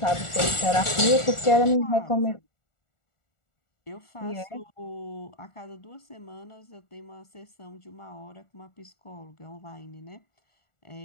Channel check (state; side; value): late; right; 1.4 ms